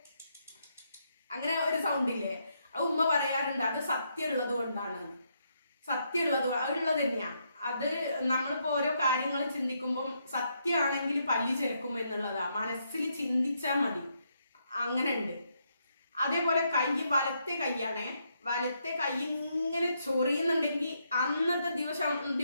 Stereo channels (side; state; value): both; inverted; correlation -0.77